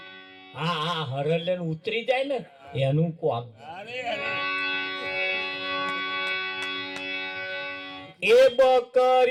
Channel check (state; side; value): identical; both; correlation 1.00